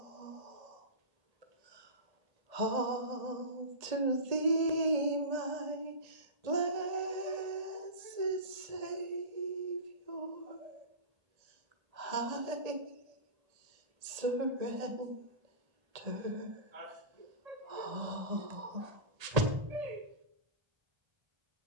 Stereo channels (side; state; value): left; late; 1.8 ms